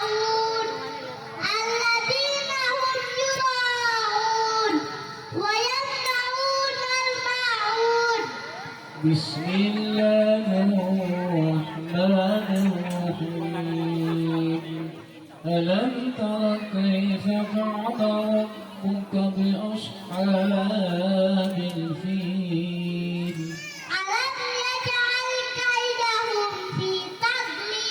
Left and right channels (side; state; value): both; identical; correlation 1.00